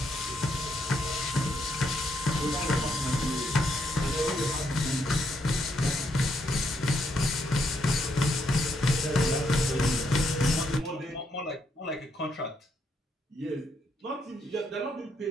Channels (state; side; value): normal; both; correlation 0.76